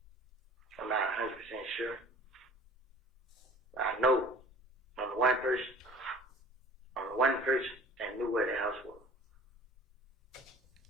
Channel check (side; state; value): both; normal; correlation 0.46